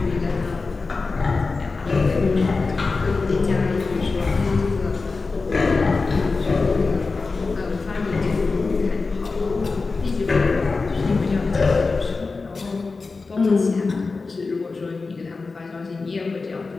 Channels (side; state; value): right; quieter; 4.1 dB